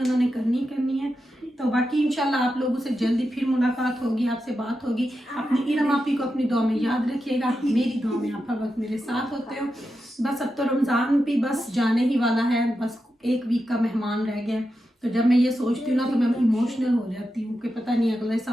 उन्होंने करनी है। तो बाकी इंशाल्लाह आप लोगों से जल्दी फिर मुलाकात होगी, आपसे बात होगी। अपनी इरम आपी को अपनी दुआ में याद रखिएगा, मेरी दुआ में आप हर वक्त मेरे साथ होते हो। बस अब तो रमज़ान भी बस जाने ही वाला है, बस 1 वीक का मेहमान रह गया। तो जब मैं ये सोचती हूँ ना तो मैं इमोशनल हो जाती हूँ कि पता नहीं अगले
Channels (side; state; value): both; normal; correlation 0.89